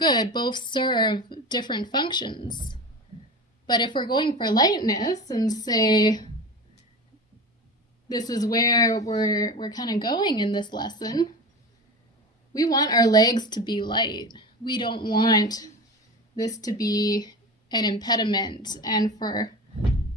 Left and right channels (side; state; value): both; normal; correlation 0.29